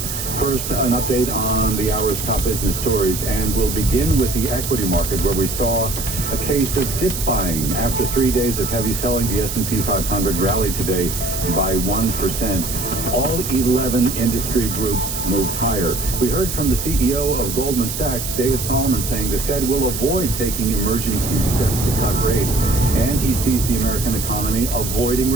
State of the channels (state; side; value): noise; right; hiss, 5 dB below the sound